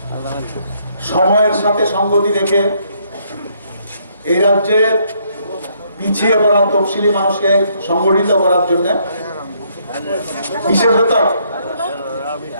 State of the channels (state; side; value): inverted; both; correlation -0.70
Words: সময়ের সাথে সঙ্গতি রেখে এই রাজ্যে পিছিয়ে পড়া তফসিলি মানুষকে সংগঠিত করার জন্য বিশেষত